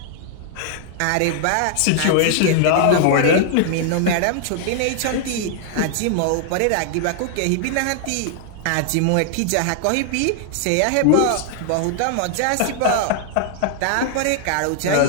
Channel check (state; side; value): different; both; correlation 0.00